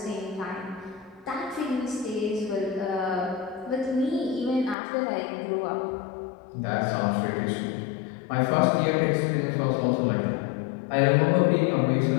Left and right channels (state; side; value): drops out; right; at 4.8 s